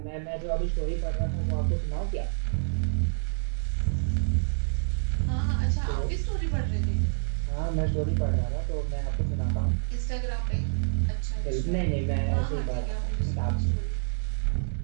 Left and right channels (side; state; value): left; silent; 56 dB below the other